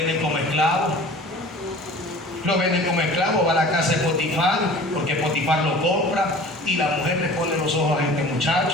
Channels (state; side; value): normal; both; correlation 0.43